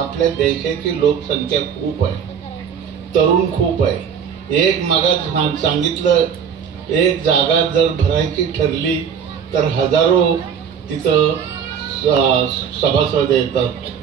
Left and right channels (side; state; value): left; quieter; 7.5 dB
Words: देशाची लोकसंख्या खूप आहे, तरुण खूप आहे. एक मागास सांगितलं, एक जागा जर भरायची ठरली तर हजारो तिथं सभासद येतात.